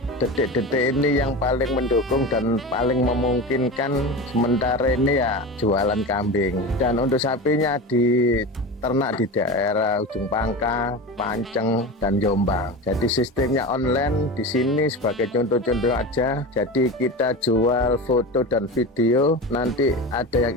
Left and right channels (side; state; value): both; normal; correlation 0.27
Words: detik-detik ini yang paling mendukung dan paling memungkinkan sementara ini ya jualan kambing. Dan untuk sapinya di ternak di daerah Ujung Pangkah, Panceng, dan Jombang. Jadi sistemnya online di sini sebagai contoh-contoh aja. Jadi kita jual foto dan video. Nanti ada